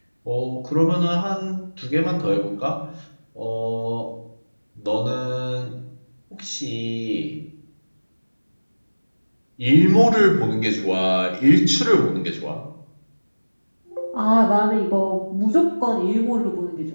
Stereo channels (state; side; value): inverted; both; correlation -1.00